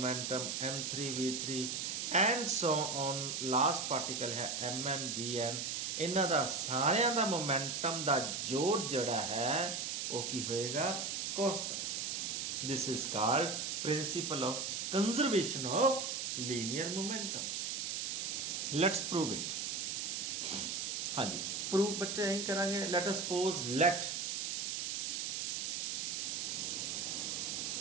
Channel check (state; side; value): noise; right; hiss, 2 dB below the sound